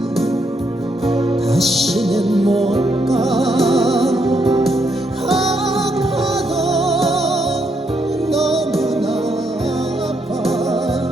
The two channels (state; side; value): normal; both; correlation 0.76